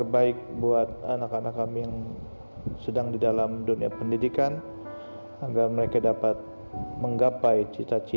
buat anak-anak kami yang sedang di dalam dunia pendidikan, agar mereka dapat menggapai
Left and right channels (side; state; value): both; inverted; correlation -1.00